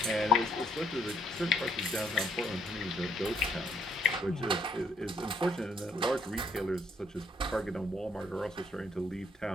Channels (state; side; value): normal; both; correlation 0.67